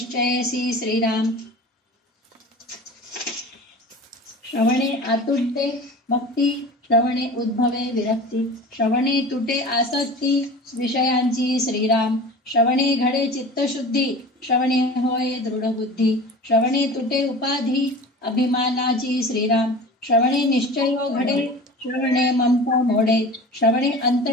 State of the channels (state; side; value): normal; both; correlation 0.37